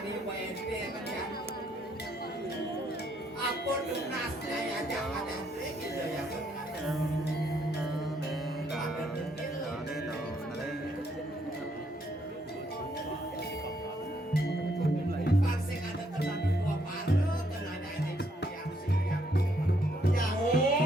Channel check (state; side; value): normal; both; correlation 0.72